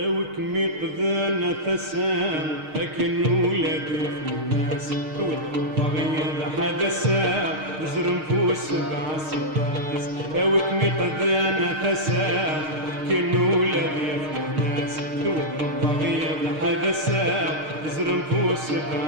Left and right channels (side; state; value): left; late; 6.5 ms